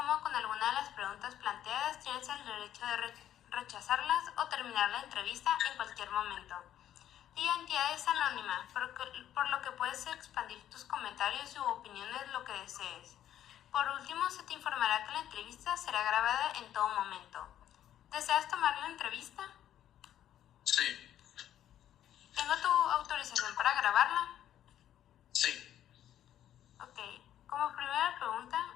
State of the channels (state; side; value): quieter; right; 11.3 dB